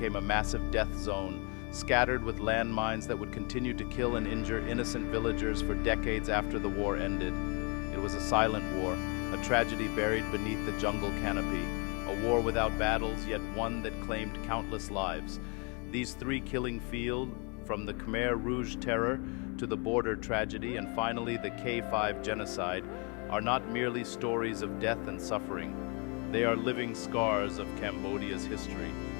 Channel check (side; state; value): right; quieter; 34.1 dB